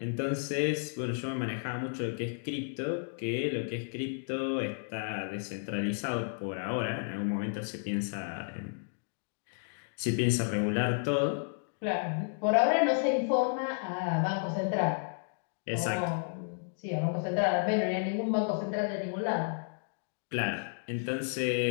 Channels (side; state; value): right; silent; digital silence